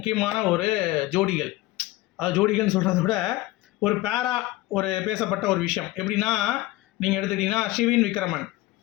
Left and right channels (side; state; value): right; quieter; 18.2 dB